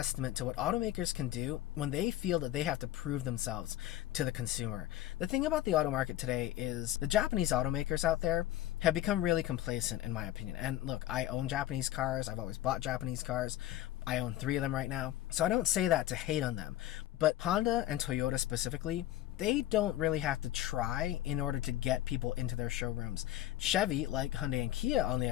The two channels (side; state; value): right; quieter; 13.7 dB